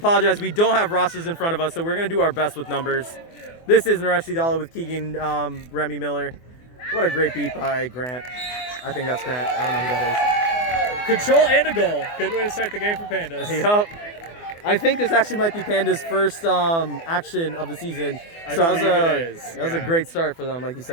we don't have rosters in front of us, so we're going to do our best with numbers. This is Naresh Sidala with Keegan Remy Miller. What a great beat by Grant. I think that's Grant. I don't know who that is. Control and a goal. Good way to start the game for Pandas. Yep. I think this actually might be Pandas' first action of the season. So that was a great start for them, like you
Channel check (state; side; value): late; right; 24 ms